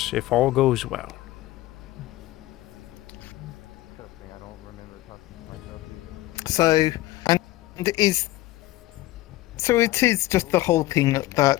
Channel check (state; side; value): quieter; right; 16.8 dB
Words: if all goes well. So, and so it is just the whole thing